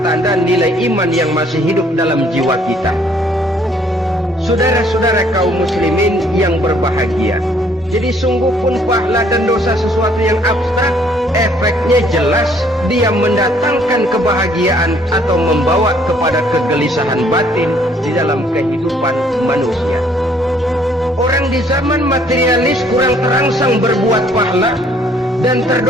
nilai iman yang masih hidup dalam jiwa kita. Saudara-saudara kaum muslimin yang berbahagia, jadi sungguh pun pahala dan dosa sesuatu yang abstrak, efeknya jelas dia mendatangkan kebahagiaan atau membawa kepada kegelisahan batin di dalam kehidupan manusia. Orang di zaman materialis kurang terangsang berbuat pahala dan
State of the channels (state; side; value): normal; both; correlation 0.62